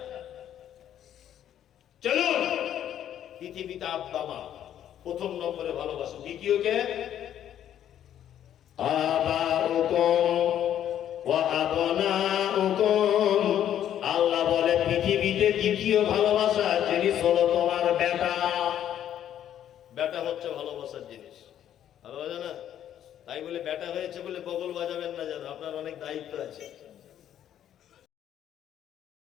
চলুন, পৃথিবীতে আব্বা মা প্রথম নম্বরে ভালোবাসো। দ্বিতীয় কে? আবাউকুম ওয়া আবনাউকুম দ্বিতীয় ভালোবাসার জিনিস হলো তোমার বেটা। বেটা হচ্ছে ভালোবাসার জিনিস, ভালোবাসা না? তাই বলে বেটা হয়েছে বলে বগল বাজাবেন না, যেন আপনার অনেক দায়িত্ব আছে।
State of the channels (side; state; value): right; quieter; 10.6 dB